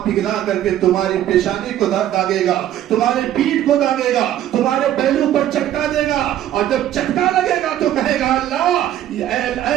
پگھلا کر کے تمہاری پیشانی کو داغے گا، تمہارے پیٹھ کو داغے گا، تمہارے پہلو پر چٹکا دے گا، اور جب چٹکا لگے گا تو کہے گا اللہ اے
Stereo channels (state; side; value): quieter; left; 12.1 dB